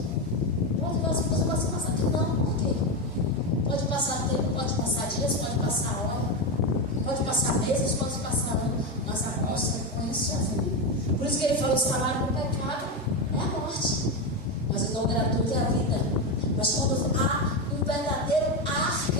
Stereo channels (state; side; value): normal; both; correlation 0.12